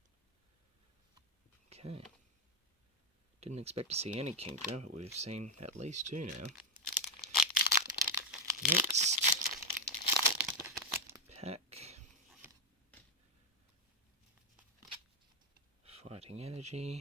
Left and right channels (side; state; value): both; normal; correlation 0.06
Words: Okay. Didn't expect to see any Kingdra, but we've seen at least two now. Next pack. Fighting